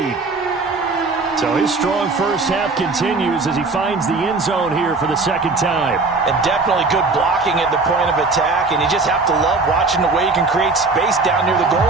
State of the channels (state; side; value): quieter; left; 3.8 dB